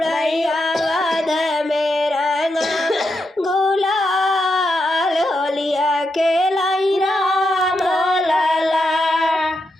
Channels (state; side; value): normal; both; correlation 0.84